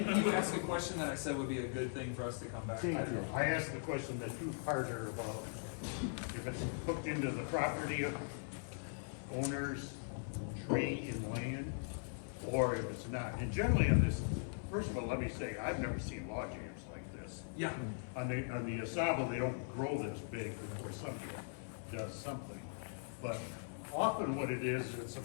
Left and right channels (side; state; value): right; silent; 51 dB below the other